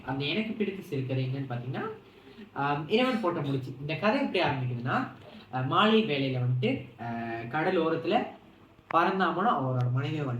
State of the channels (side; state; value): both; identical; correlation 1.00